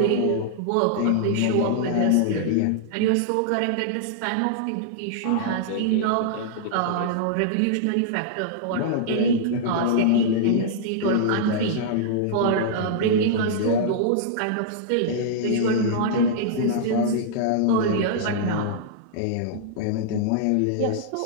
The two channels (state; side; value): different; both; correlation -0.02